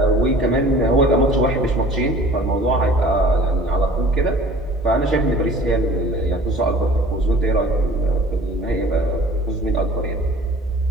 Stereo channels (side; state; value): both; normal; correlation 0.48